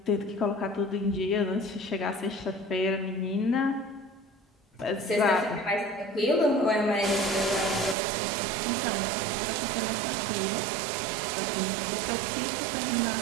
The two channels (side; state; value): left; drops out; at 8.0 s